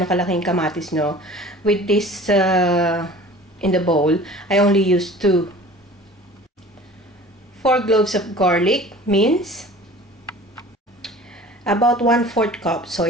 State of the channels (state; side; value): normal; both; correlation 0.44